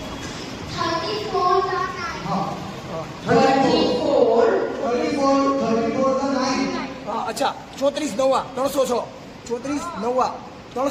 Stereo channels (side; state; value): both; identical; correlation 1.00